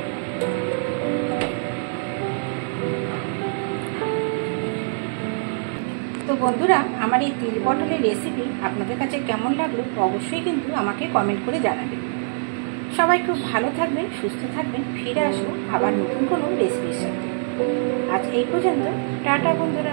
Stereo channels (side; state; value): left; silent; digital silence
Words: তো বন্ধুরা, আমার এই তিল পটলের রেসিপি আপনাদের কাছে কেমন লাগলো অবশ্যই কিন্তু আমাকে কমেন্ট করে জানাবেন। সবাই খুব ভালো থাকবেন, সুস্থ থাকবেন। ফিরে আসবো আবার নতুন কোনো রেসিপির সাথে। আজ এই পর্যন্ত, টাটা